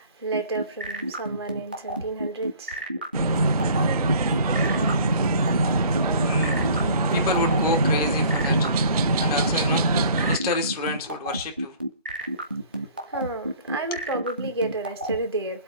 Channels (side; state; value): both; inverted; correlation -0.51